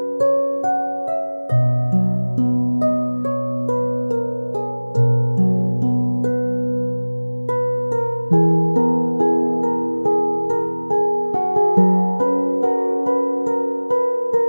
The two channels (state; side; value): inverted; both; correlation -1.00